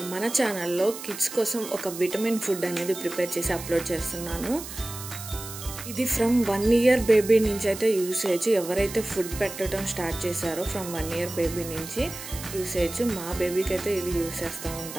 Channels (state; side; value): noise; right; hiss, 11 dB below the sound